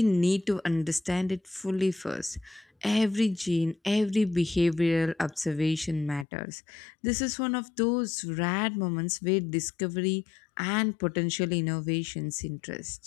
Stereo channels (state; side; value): drops out; right; at 6.2 s